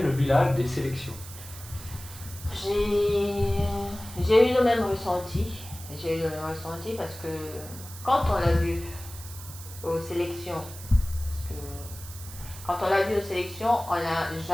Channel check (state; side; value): noise; right; hiss, 14 dB below the sound